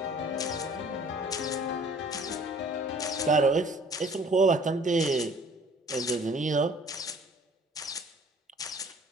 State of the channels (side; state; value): both; normal; correlation 0.53